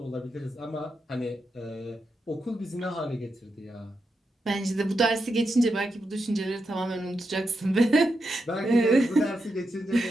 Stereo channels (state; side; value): normal; both; correlation 0.86